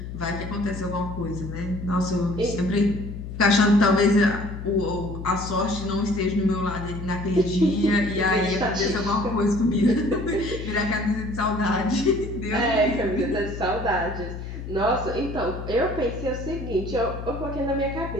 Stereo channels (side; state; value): left; noise; hum, 8 dB below the sound